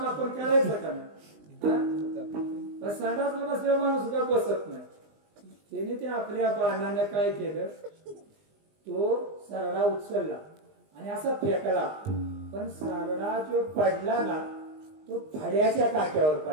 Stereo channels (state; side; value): late; left; 20 ms